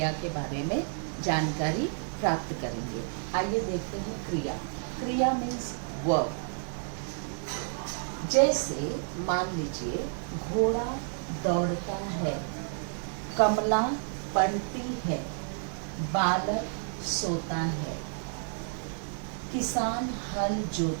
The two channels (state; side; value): silent; left; 58 dB below the other